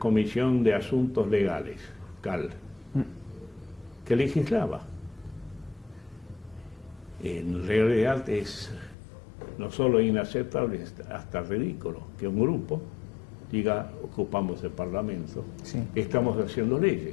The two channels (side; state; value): right; drops out; at 9.0 s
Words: de Asuntos Legales, CAL, que legislaba. En realidad es no solo inaceptable, hasta ridículo que un grupo diga: ocupamos el Parlamento, sí, estamos haciendo